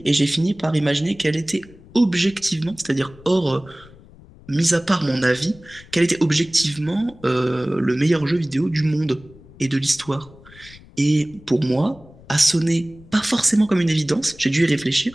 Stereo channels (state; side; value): noise; left; rumble, 23 dB below the sound